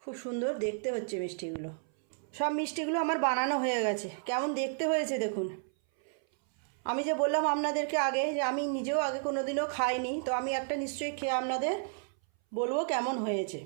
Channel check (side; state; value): left; silent; 56 dB below the other